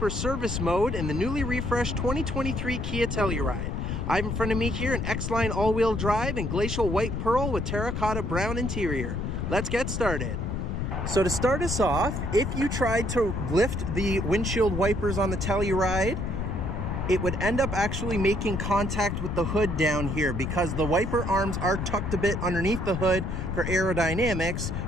service mode in the newly refreshed 2023 Kia Telluride. I have in front of me here an X-Line all-wheel drive in glacial white pearl with terracotta brown interior. Let's get started. So to start us off, if you tried to lift the windshield wipers on the Telluride, it would end up actually making contact with the hood down here because the wiper arms are tucked a bit underneath the hood for aerodynamics,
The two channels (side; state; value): left; noise; rumble, 3 dB below the sound